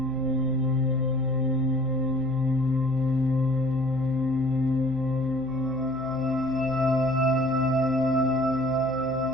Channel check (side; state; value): right; noise; hum, 16 dB below the sound